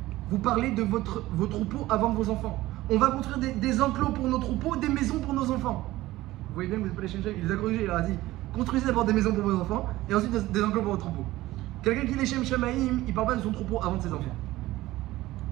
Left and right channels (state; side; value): quieter; left; 17.1 dB